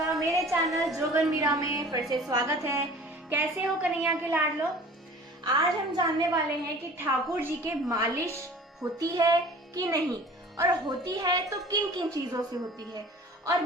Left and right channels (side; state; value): both; normal; correlation 0.44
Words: मेरे चैनल जोगन मीरा में फिर से स्वागत है। कैसे हो कन्हैया के लाडलो। आज हम जानने वाले हैं कि ठाकुर जी के मालिश होती है कि नहीं, और होती है तो किन किन चीजों से होती है, और